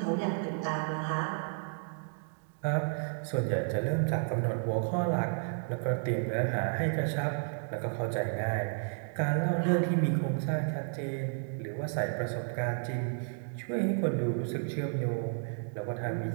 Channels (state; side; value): silent; left; 56 dB below the other